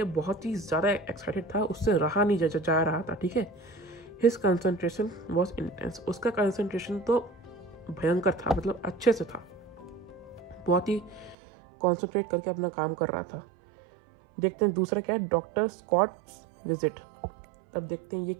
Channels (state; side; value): drops out; left; at 11.4 s